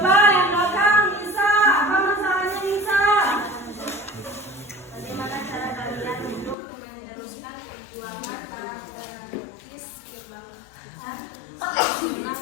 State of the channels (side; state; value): right; drops out; at 6.6 s